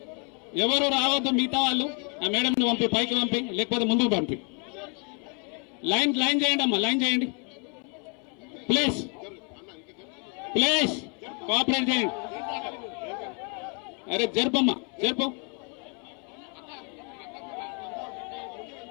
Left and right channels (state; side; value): quieter; right; 36.8 dB